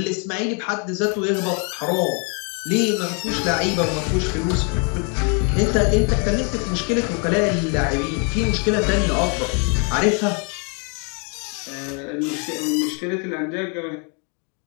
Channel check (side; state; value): right; quieter; 37.3 dB